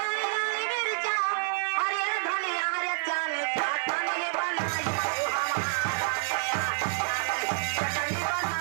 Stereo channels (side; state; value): left; silent; digital silence